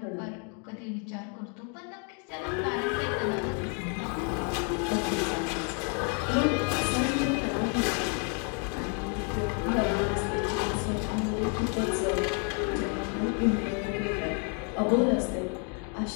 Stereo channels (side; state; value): right; quieter; 39.5 dB